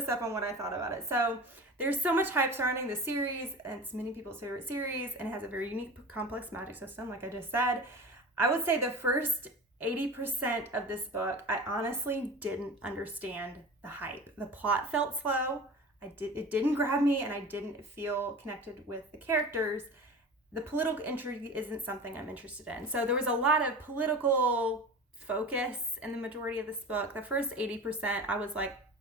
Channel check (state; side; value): normal; both; correlation 0.34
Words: up on what I thought about it. So there's so much hype surrounding the series, and it's many people's favorite series, and it has a very unique, complex magic system, like I just said. I would say the first 80% of this book, I honestly didn't understand the hype. The plot felt slow. It didn't grab me, and I didn't feel connected with the characters. The political intrigue isn't something I'm interested in. So there was a lot of political focus in the majority of this book. The first 80%, I was like,